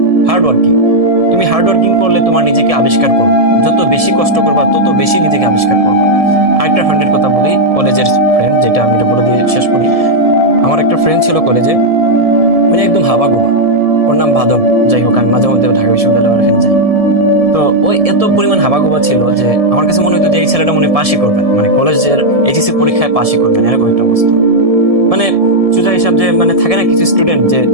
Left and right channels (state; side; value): late; left; 1.7 ms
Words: hard working. তুমি হার্ড ওয়ার্কিং করলে তোমার নিজেকে আবিষ্কার করবে, যত বেশি কষ্ট করবা তত বেশি নিজেকে আবিষ্কার করবা। আরেকটা ফ্রেন্ডের কথা বলি, কলেজের ফ্রেন্ড, যেটা আমি এটা বলে দিয়ে শেষ করি। আমার একটা ফ্রেন্ড ছিল কলেজে, মানে একদম হাবাগোবা, ওর নাম বাদন। যাই হোক, আমি মাঝে মধ্যে ঢাকা বিশ্ববিদ্যালয়ের এখানে যাই। তো ওই এত পরিমাণ হাবাগোবা ছিল যে আমার কাছে মনে হতো যে এই ছেলেটা মনে পাশই করবেন, মানে কলেজের এইচএসসি পরীক্ষায় পাশই করবেন, এরকম একটা অবস্থা। মানে সোজা হিসাব যে মানে থাকে না কিছু স্টুডেন্ট যে